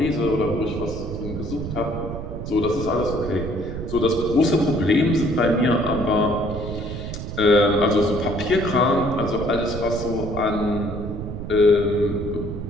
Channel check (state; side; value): noise; right; rumble, 7 dB below the sound